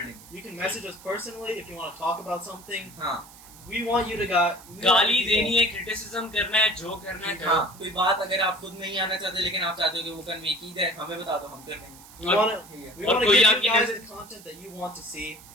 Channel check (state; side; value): noise; right; hiss, 20 dB below the sound